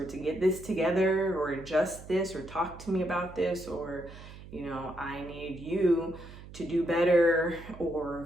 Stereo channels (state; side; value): noise; right; hum, 16 dB below the sound